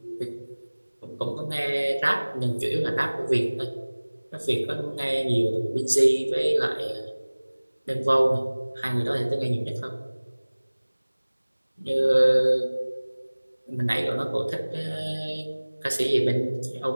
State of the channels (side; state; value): both; inverted; correlation -1.00